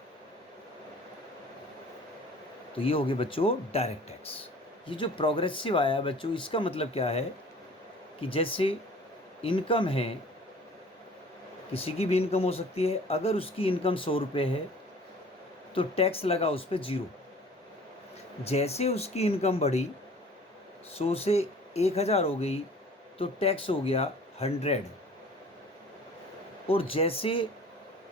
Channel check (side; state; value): both; normal; correlation 0.48